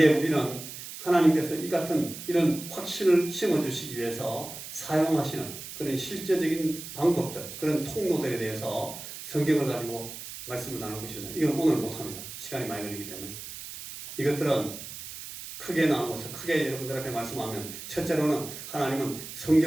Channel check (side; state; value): right; noise; hiss, 11 dB below the sound